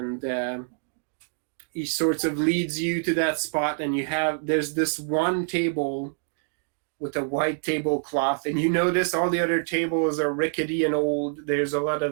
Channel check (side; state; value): left; silent; digital silence